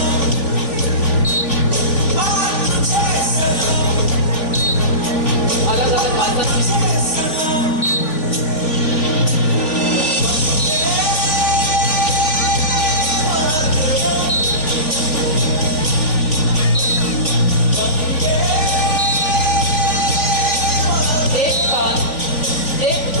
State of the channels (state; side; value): late; right; 3.4 ms